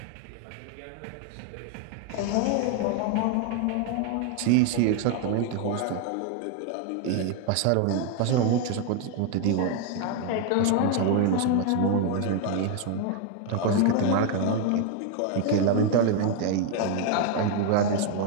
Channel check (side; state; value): both; different; correlation 0.01